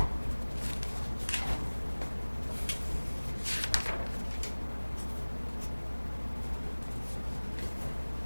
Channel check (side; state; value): both; inverted; correlation -1.00